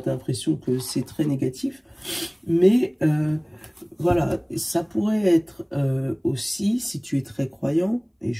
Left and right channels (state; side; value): identical; both; correlation 1.00